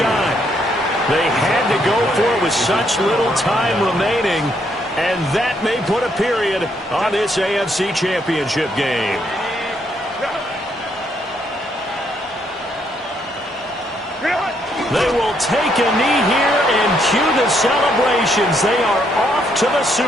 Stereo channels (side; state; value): both; normal; correlation 0.73